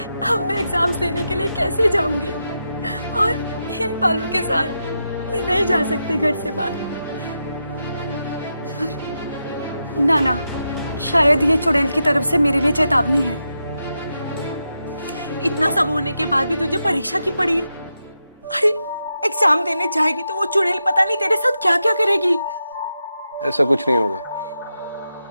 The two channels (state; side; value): inverted; both; correlation -0.87